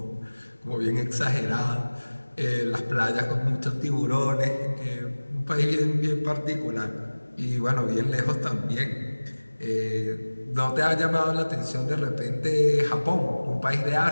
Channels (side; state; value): both; inverted; correlation -1.00